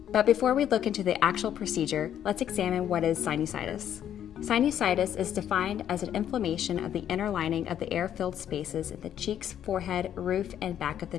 But before we look into the actual procedure, let's examine what is sinusitis. Sinusitis is defined as an inflammation of the inner lining of the air-filled spaces in the cheeks, forehead, roof, and back of the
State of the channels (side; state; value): right; quieter; 10.2 dB